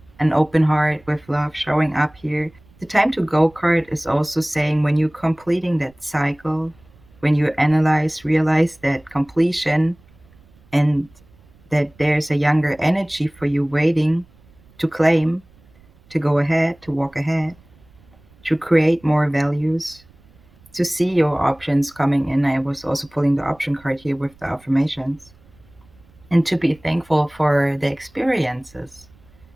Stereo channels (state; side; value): noise; right; rumble, 29 dB below the sound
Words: an open heart, with love showing up here. The time to go card is also saying when you're completing that cycle, when you analyze, realize that completion and that there's a younger energy for you waiting to claim, to go ahead, to walk ahead, to create more values, to see your options coming in. I was also pulling the option card here with the affirmations, and to be thankful for the experiences